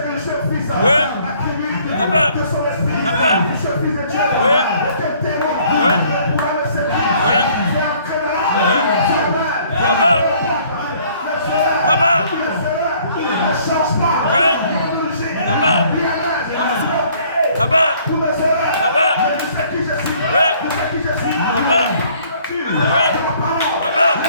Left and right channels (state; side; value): inverted; both; correlation -0.59